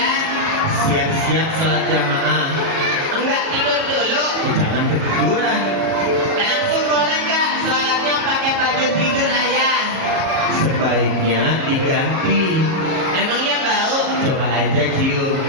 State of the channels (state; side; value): late; left; 37 ms